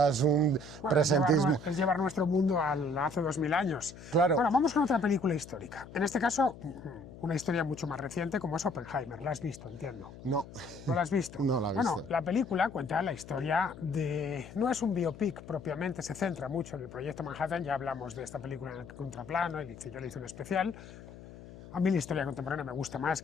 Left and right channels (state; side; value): noise; left; hum, 16 dB below the sound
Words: es un presentismo. Es llevar nuestro mundo hace 2000 años. Claro. Bueno, vamos con otra película histórica. En este caso, una historia mucho más reciente como es Oppenheimer. ¿La has visto, entiendo? No. ¿No la has visto? No la he visto. Bueno, la película cuenta la historia de... No es un biopic propiamente, se centra mucho en el proyecto Manhattan, ya hablamos de esta película en el contraplano, yo le hice un especial. A mí la historia contemporánea me gusta más